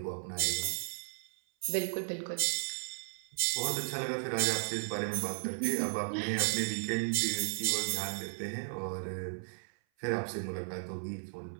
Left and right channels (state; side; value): silent; left; 54 dB below the other